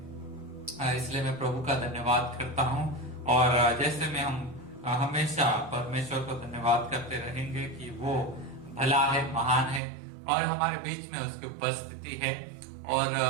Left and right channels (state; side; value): drops out; left; at 9.8 s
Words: इसलिए मैं प्रभु का धन्यवाद करता हूँ। और जैसे में हम हमेशा परमेश्वर को धन्यवाद करते रहेंगे कि वो भला है, महान है, और हमारे बीच में उसकी उपस्थिति है। और